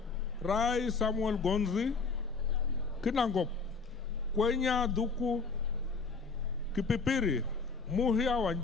Rai Samuel Gonzi. Kinangop, Kwenya Duku. Kipipiri, Muhia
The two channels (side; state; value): right; quieter; 4.6 dB